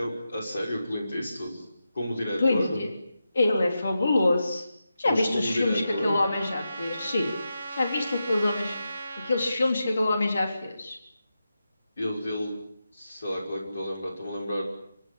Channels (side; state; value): both; inverted; correlation -0.89